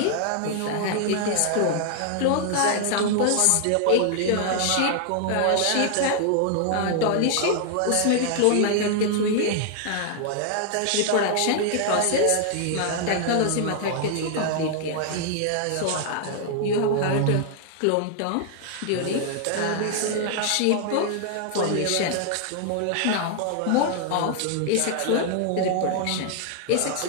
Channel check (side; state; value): both; different; correlation 0.00